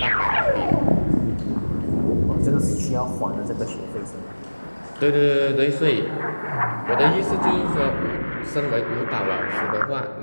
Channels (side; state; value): both; inverted; correlation -1.00